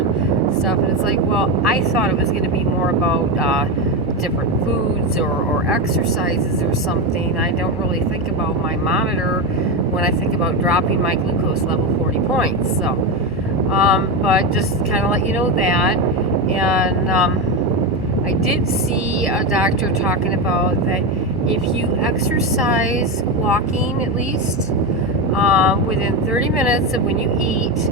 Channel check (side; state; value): both; normal; correlation 0.14